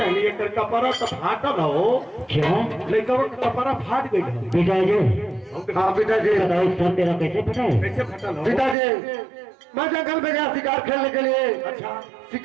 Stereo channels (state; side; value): drops out; left; at 8.8 s